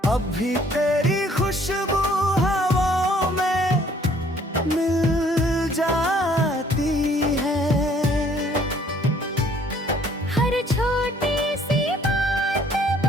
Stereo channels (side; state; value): both; normal; correlation 0.60